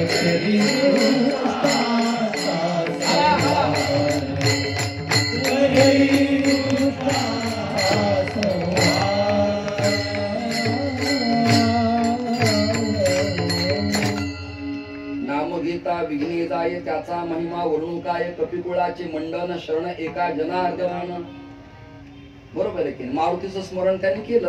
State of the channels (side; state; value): both; identical; correlation 1.00